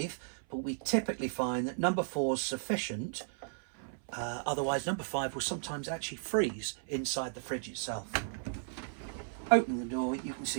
but we typically find that number 4 is sufficient. Otherwise, number 5 will sometimes actually freeze inside the fridge itself. Open the door, you can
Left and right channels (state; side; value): silent; left; 55 dB below the other